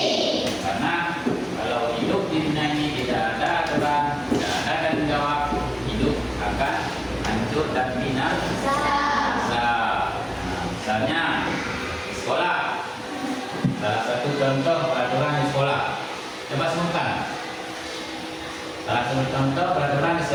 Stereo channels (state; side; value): identical; both; correlation 1.00